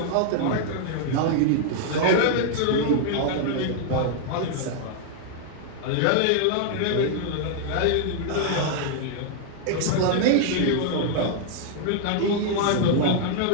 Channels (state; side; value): different; both; correlation -0.01